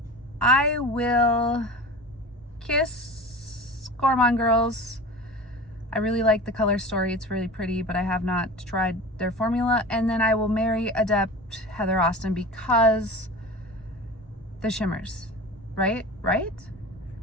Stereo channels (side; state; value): both; normal; correlation 0.34